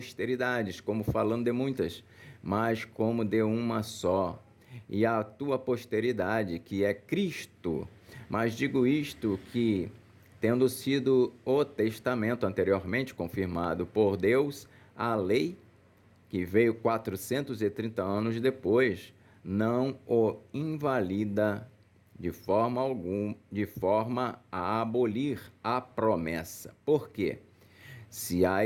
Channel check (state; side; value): identical; both; correlation 1.00